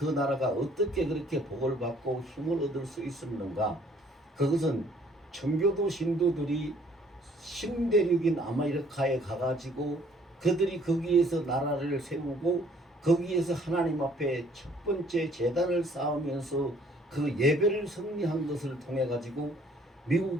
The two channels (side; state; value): both; normal; correlation 0.60